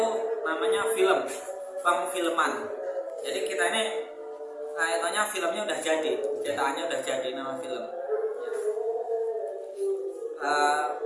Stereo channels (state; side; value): identical; both; correlation 1.00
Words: namanya film, pengfilman. Jadi kita ini kayaknya filmnya udah jadi, cetakannya udah jadi, nama film.